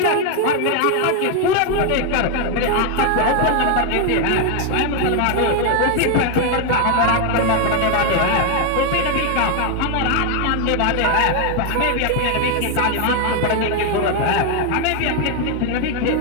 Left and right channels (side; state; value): both; different; correlation 0.01